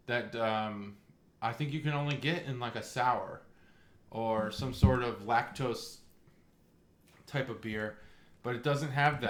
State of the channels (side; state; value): both; identical; correlation 1.00